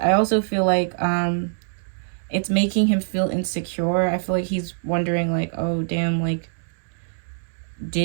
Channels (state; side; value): silent; left; digital silence